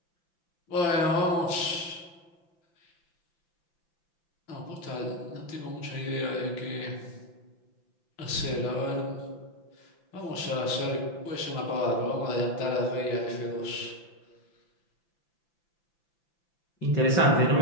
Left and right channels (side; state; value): right; late; 5.9 ms